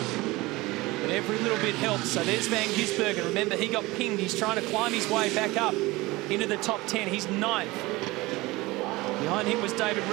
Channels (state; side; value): quieter; left; 20.9 dB